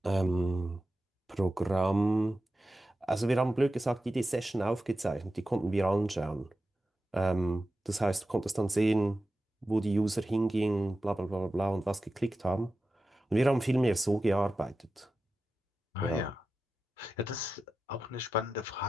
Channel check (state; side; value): normal; both; correlation 0.92